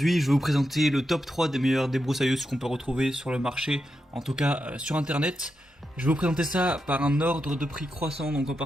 je vais vous présenter le top 3 des meilleures débroussailleuses qu'on peut retrouver sur le marché, en tout cas sur internet. Je vais vous présenter ça par un ordre de prix croissant, donc en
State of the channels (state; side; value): normal; both; correlation 0.86